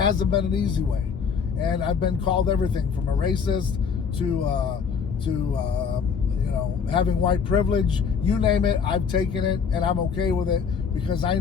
been an easy way. And I've been called everything from a racist to having white privilege. You name it, I've taken it, and I'm okay with it, because I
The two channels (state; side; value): quieter; right; 6.3 dB